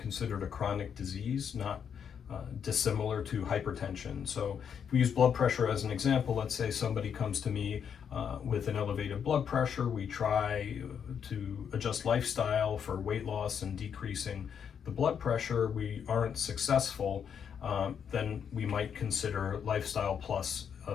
a chronic disease, not dissimilar to hypertension. So, if we use blood pressure as an example, let's say somebody comes to me with an elevated blood pressure. We try to adjust lifestyle for weight loss and decreasing the blood pressure. We aren't successful, then we might consider lifestyle plus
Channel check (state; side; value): quieter; right; 7.6 dB